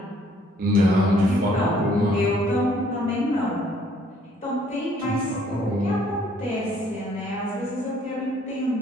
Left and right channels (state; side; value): normal; both; correlation 0.63